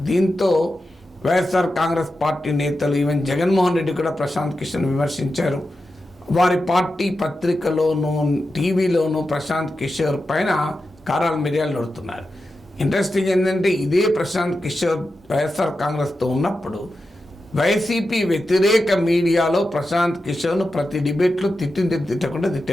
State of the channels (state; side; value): normal; both; correlation 0.90